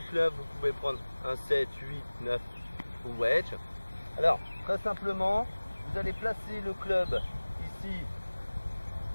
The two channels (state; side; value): inverted; both; correlation -1.00